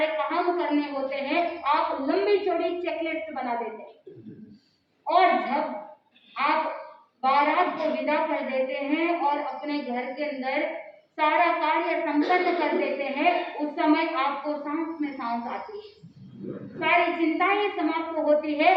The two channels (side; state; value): both; identical; correlation 1.00